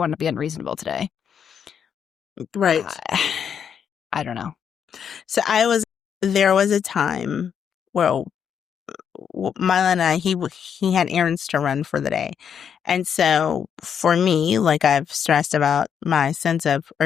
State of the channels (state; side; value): quieter; right; 7.8 dB